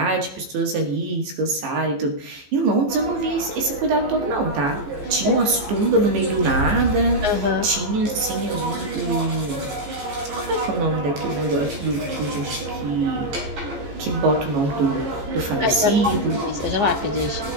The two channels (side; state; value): left; late; 15 ms